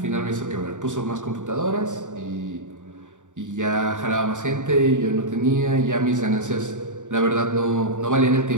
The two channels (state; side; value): late; left; 0.86 ms